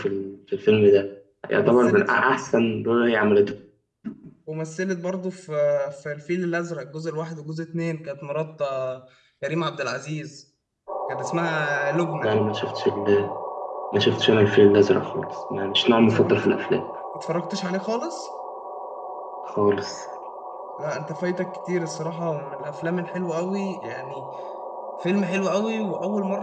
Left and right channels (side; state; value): both; identical; correlation 1.00